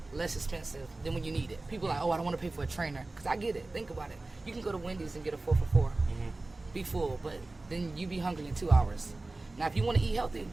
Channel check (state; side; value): quieter; left; 3.1 dB